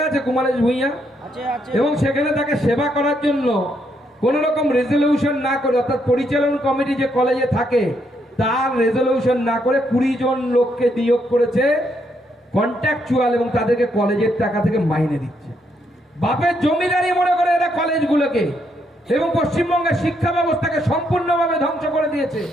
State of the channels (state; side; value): normal; both; correlation 0.75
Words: আছে কুমারেশ ভূঁইয়া, এবং সেখানে তাকে সেবা করার জন্য কোন রকম রেজলিউশন না করে, অর্থাৎ পরিচালন কমিটি যে কলেজে থাকে তার রেজলিউশন না করে 20 জন লোককে নিয়োগ করেছে কন্ট্রাকচুয়াল, এবং তাদেরকে কলেজের টাকা থেকে মাইনে দিচ্ছে। বাপের জমিদারি মনে করে এরা কলেজগুলোকে, এবং পশ্চিমবঙ্গের শিক্ষা ব্যবস্থাকে সম্পূর্ণভাবে ধ্বংস করে দিয়েছে।